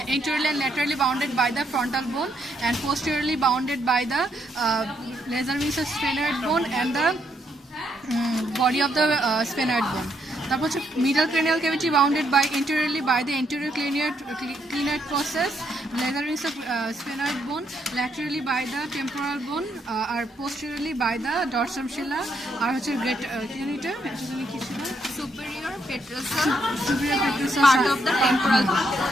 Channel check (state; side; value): normal; both; correlation 0.75